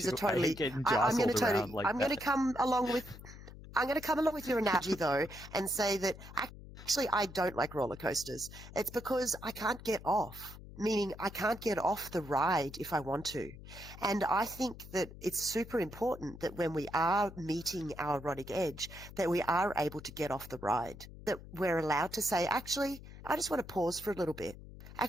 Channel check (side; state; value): left; noise; hum, 15 dB below the sound